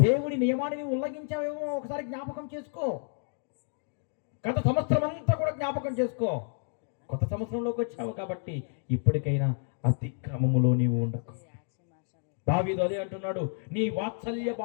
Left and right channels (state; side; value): silent; right; 58 dB below the other